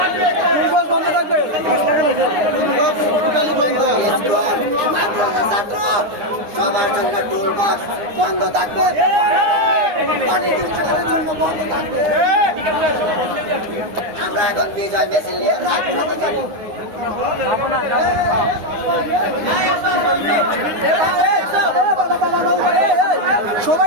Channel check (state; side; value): late; left; 9.8 ms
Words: সবার জন্য টুল বক্স বন্ধ থাকবে, জন্য বন্ধ থাকবে। আমরা এখন বিজয় মিছিল নিয়ে রাজপথে যাবো।